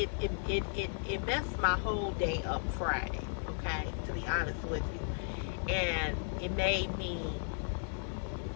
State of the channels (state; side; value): silent; right; digital silence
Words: messed my whole day up Friday, okay, to be honest with you. And it made me